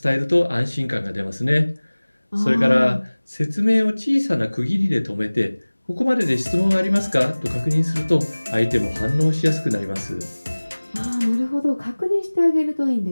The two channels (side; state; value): both; inverted; correlation -1.00